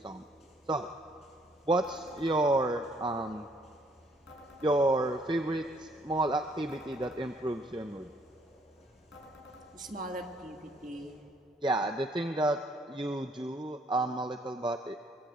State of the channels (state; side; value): normal; both; correlation 0.65